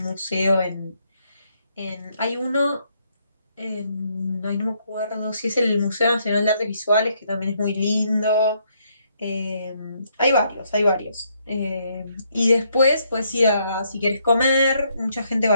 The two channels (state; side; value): inverted; both; correlation -0.73